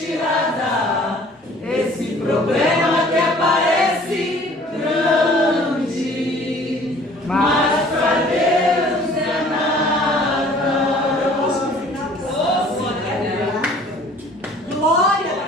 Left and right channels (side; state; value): both; normal; correlation 0.52